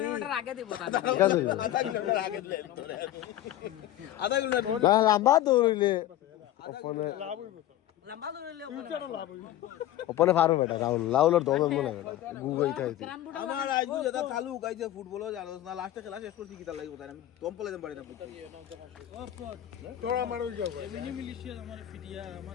আগে দিব তা আধা কিলোমিটার আগে দিলে আধা কিলোমিটার না লম্বা দৌড়িলে লম্বা দৌড়িলে ওপনে পারো বেটা রাহুলের দমে মনে বেটা গুগল খাইছে আমার আইজু যেটা চালু গাইছে ফুটবলও জানো না লাস্টে খেলা শেষ করছি কিটা লাগিব তাই আমি দম পলে দেন পারি না তোরা আমার ওই যাও মিনি মিলিশিয়া আমার ফিটিয়া আমার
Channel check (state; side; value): quieter; right; 13.3 dB